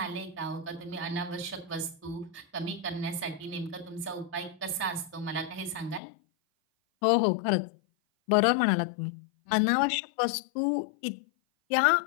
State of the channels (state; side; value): drops out; right; at 6.0 s